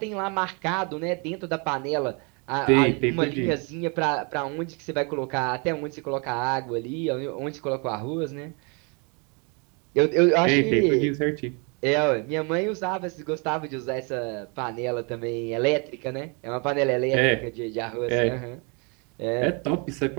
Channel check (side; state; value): left; quieter; 33.7 dB